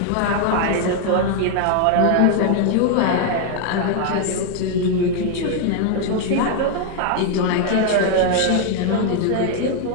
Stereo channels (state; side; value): different; both; correlation 0.00